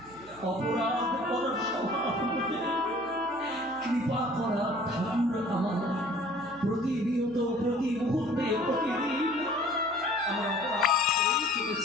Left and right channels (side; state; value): right; noise; hum, 25 dB below the sound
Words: অপরাধ করা স্বভাব মোদের, আমরা ঠাকুর আমার প্রতিনিয়ত প্রতি মুহূর্তে প্রতিদিন আমরা অপরাধ করেই